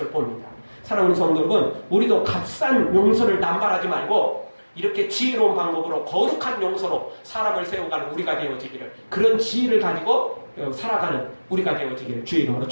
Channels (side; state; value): both; inverted; correlation -1.00